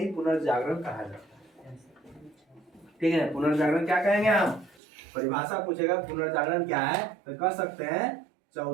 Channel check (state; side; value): drops out; left; at 4.8 s